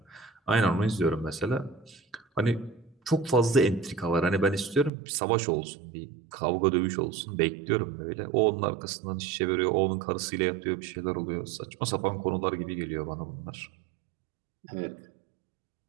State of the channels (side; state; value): left; drops out; at 4.9 s